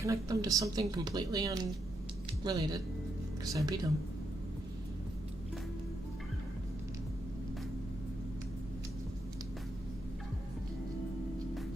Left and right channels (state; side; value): normal; both; correlation 0.81